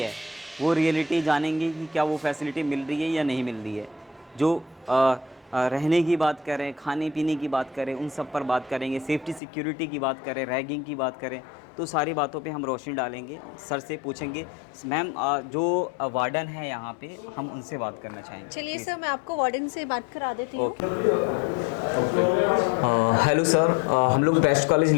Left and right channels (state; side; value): drops out; right; at 9.4 s